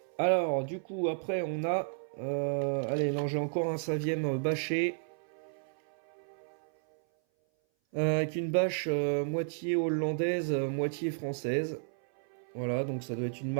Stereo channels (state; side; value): silent; left; 56 dB below the other